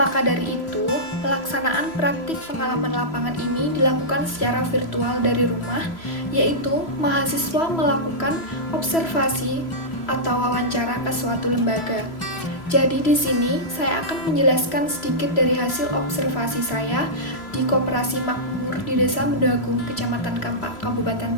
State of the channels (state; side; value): late; right; 3.0 ms